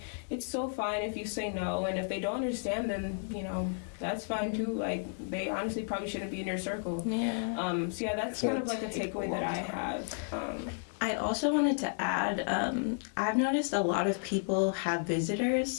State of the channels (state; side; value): silent; right; digital silence